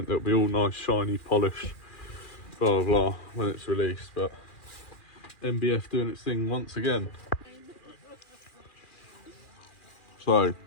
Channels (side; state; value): right; late; 2.4 ms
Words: It'll be all nice, shiny, polished, blah blah blah when it's released. But MBF doing its thing once again. So